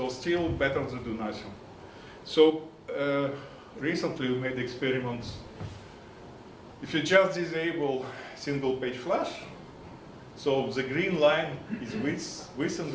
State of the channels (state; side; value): identical; both; correlation 1.00